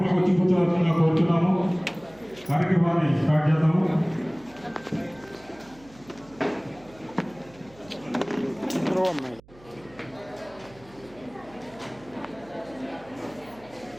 వచ్చి కూర్చోవలసిందిగా కోరుతున్నాము. కార్యక్రమాన్ని స్టార్ట్ చేద్దాము.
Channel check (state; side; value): noise; right; hum, 24 dB below the sound